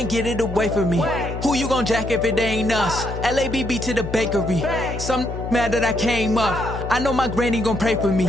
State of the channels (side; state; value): left; noise; hum, 7 dB below the sound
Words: get it away from me. Who you gon' jack if it ain't us? LABB to the bakery. Some mad that I came up. I know my granny gon' pray for